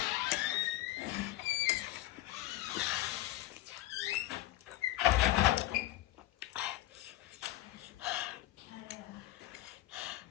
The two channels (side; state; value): right; quieter; 15.8 dB